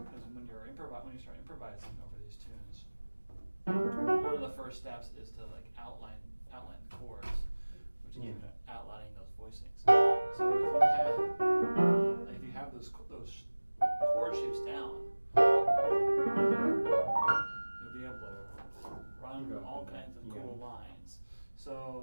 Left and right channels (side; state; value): both; inverted; correlation -1.00